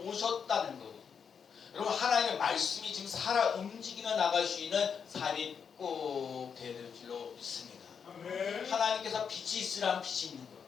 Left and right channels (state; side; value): quieter; right; 6.7 dB